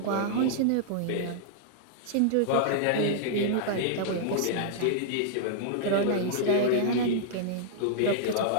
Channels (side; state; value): both; different; correlation -0.01